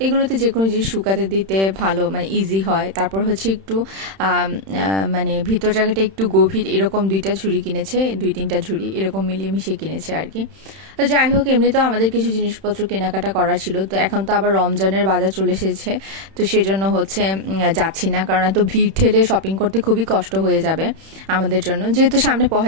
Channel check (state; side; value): late; left; 31 ms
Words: এগুলোতে যে কোনো জিনিস শুকাতে দিতে ভালো, মানে ইজি হয়। তারপর হচ্ছে একটু মানে ভিতর জায়গাটা একটু গভীর, এরকম দুইটা ঝুড়ি কিনেছে, 2-3টা ঝুড়ি এরকম মিলিয়ে মিশিয়ে কিনেছে আর কি। তো যাই হোক, এমনিতেও আমাদের কিছু জিনিসপত্র কেনাকাটা করার ছিল। তো এখন তো আবার রমজানের বাজার চলে এসেছে, তো সেজন্য হচ্ছে যাচ্ছি না, কারণ এত ভিড় ঠেলে শপিং করতে খুবই কষ্ট হয়ে যাবে আমাদের জন্য। যেহেতু সামনে